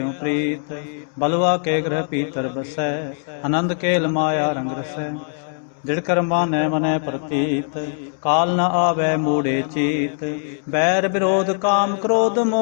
प्रीत। बलुआ के ग्रह पीतर बसै, आनंद केल माया रंग रसै। दृढ़ मानै मनै प्रतीत, काल न आवे मूढ़े चीत। बैर विरोध काम क्रोध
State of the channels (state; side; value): silent; right; digital silence